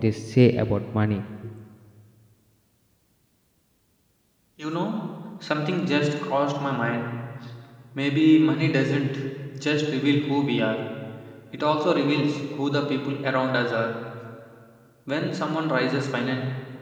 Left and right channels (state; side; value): identical; both; correlation 1.00